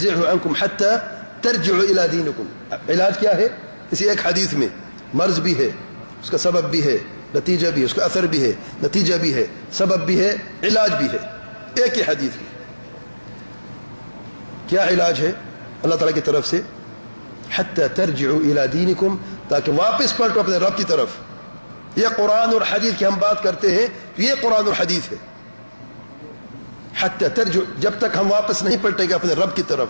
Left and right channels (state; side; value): inverted; both; correlation -1.00